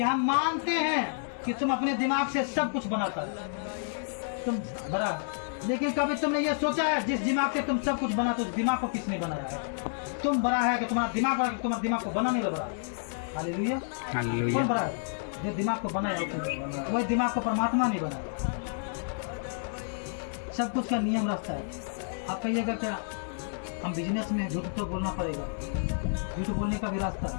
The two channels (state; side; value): silent; right; digital silence